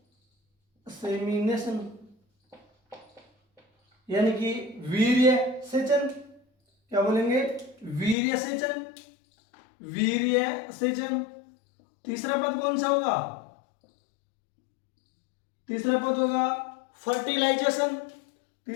इनसेमिनेशन यानी कि वीर्य सेचन। क्या बोलेंगे? वीर्य सेचन, वीर्य सेचन। तीसरा पद कौन सा होगा? तीसरा पद होगा फर्टिलाइजेशन।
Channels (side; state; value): right; drops out; at 8.2 s